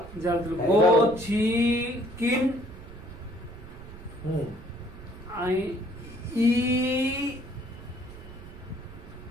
জাল হ্যাঁ, গচিকিন হুম, আই ই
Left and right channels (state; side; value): noise; right; rumble, 16 dB below the sound